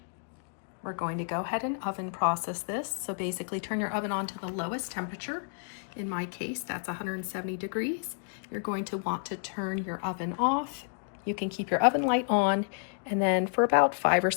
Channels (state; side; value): silent; right; 57 dB below the other